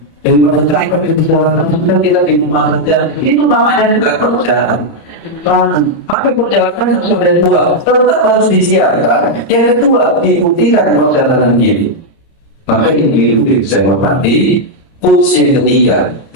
yang perjalanan kita di rumah saja, itu namanya juga perjalanan. Maka perjalanan sudah dua, tetap harus disiapkan. Yang kedua, dibuktikan perjalanan ini. Maka ini bisa menghormati. Putus yang ketiga,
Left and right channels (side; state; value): right; late; 30 ms